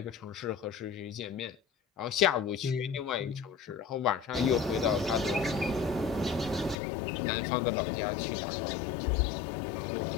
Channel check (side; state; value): right; drops out; at 6.8 s